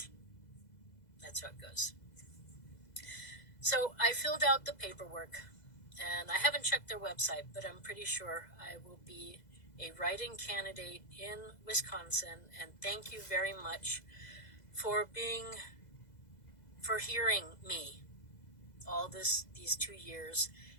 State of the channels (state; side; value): late; right; 2.0 ms